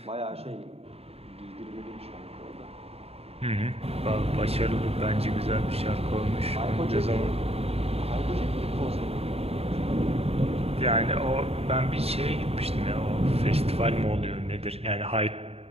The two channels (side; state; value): left; late; 0.29 ms